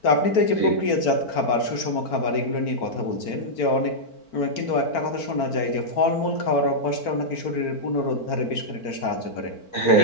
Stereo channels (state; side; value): late; right; 4.4 ms